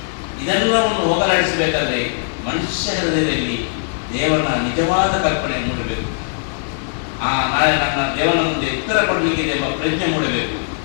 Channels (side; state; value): right; silent; 66 dB below the other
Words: ಇದೆಲ್ಲವನ್ನು ಹೋಗಲಾಡಿಸಬೇಕಾದ್ರೆ ಮನುಷ್ಯ ಹೃದಯದಲ್ಲಿ ದೇವರ ನಿಜವಾದ ಕಲ್ಪನೆ ಮೂಡಬೇಕು. ನಾಳೆ ನನ್ನ ದೇವನ ಮುಂದೆ ಉತ್ತರ ಕೊಡಲಿಕ್ಕಿದೆ ಎಂಬ ಪ್ರಜ್ಞೆ ಮೂಡಬೇಕು.